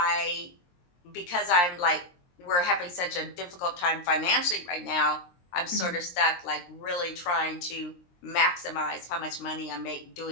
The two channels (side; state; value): right; late; 23 ms